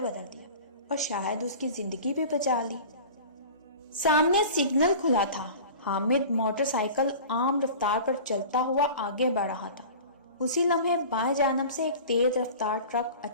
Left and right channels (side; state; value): both; inverted; correlation -0.38